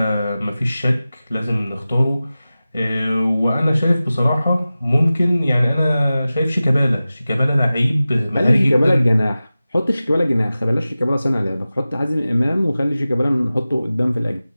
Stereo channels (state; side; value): inverted; both; correlation -0.96